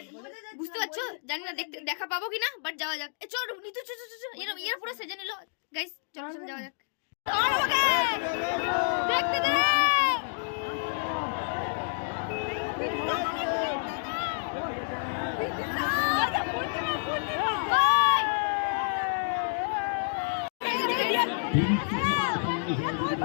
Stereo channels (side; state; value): right; silent; digital silence